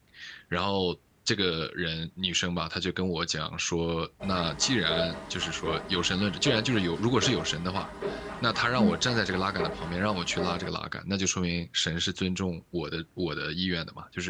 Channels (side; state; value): both; identical; correlation 1.00